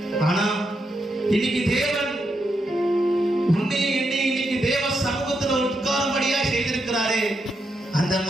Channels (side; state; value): both; normal; correlation 0.83